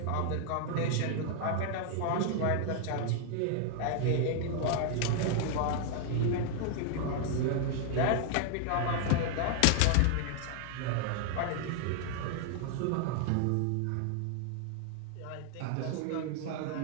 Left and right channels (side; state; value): both; different; correlation 0.00